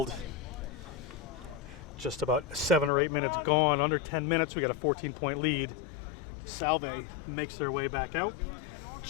Just about 7 or 8 minutes gone, under 10 minutes. We got a 14-point lead. Salve makes their way back out.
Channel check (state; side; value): drops out; right; at 2.9 s